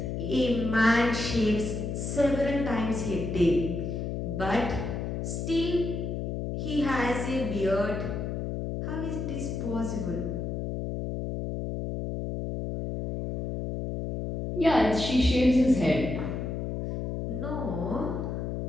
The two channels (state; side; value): noise; left; hum, 3 dB below the sound